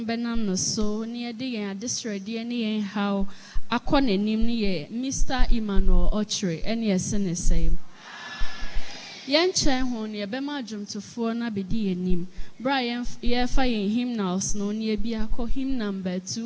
benam no so ni ede yen adesrede ni yen how akọ nanim ni ye Mr. Emmauel Okyere ene ese ne sen yen chen ho ni ebema adwumtofo na bedi yenim bra ye fa yen hymnals no ni ebi akọ hymn number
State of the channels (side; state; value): both; identical; correlation 1.00